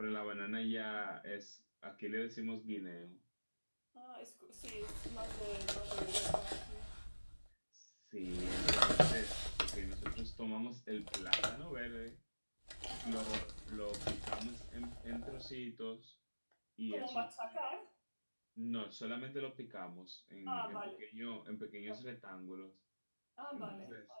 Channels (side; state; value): both; inverted; correlation -1.00